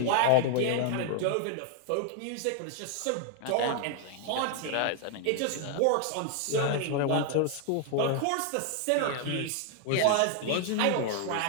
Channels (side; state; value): both; different; correlation 0.00